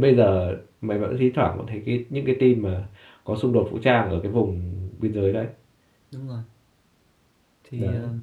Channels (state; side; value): identical; both; correlation 1.00